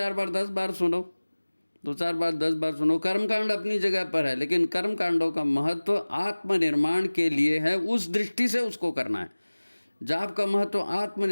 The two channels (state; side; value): inverted; both; correlation -1.00